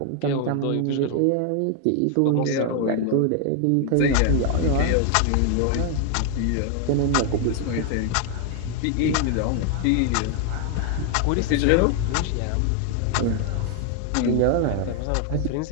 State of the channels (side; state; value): both; different; correlation 0.00